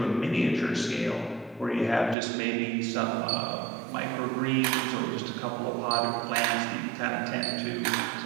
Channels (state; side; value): drops out; left; at 2.1 s